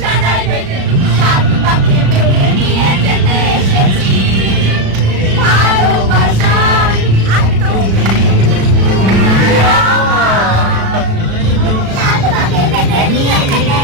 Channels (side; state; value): left; late; 36 ms